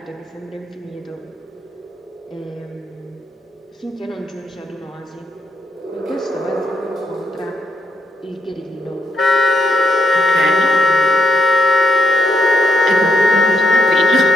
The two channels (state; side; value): normal; both; correlation 0.77